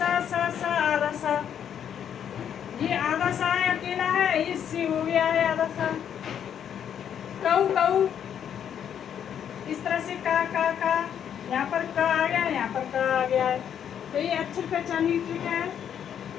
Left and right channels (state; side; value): quieter; right; 8.9 dB